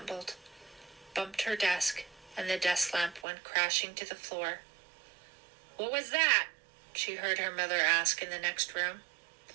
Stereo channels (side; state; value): left; drops out; at 3.2 s